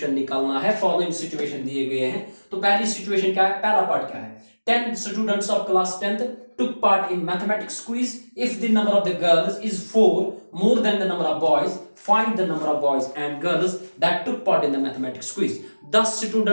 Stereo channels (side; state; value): both; inverted; correlation -1.00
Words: निकालना है। फॉलोइंग सिचुएशन दिए गए हैं। तो पहली सिचुएशन क्या है? पहला पार्ट क्या है? 10 students of class 10th took part in mathematics quiz. If the number of the girls is 4 more than the number of boys, find the number of boys and girls that took part in the mathematics quiz. 10